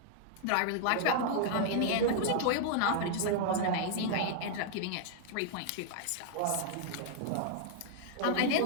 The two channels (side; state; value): both; different; correlation -0.01